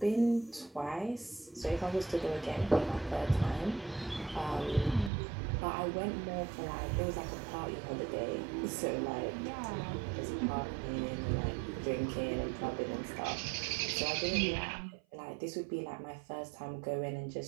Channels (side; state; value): left; drops out; at 5.1 s